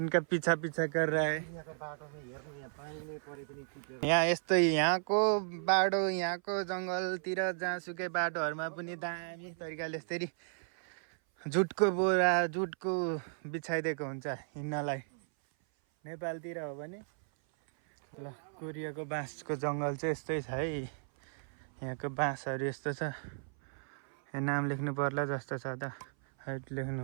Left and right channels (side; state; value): left; silent; 55 dB below the other